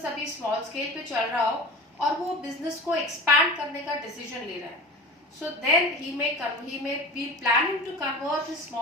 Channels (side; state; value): both; normal; correlation 0.33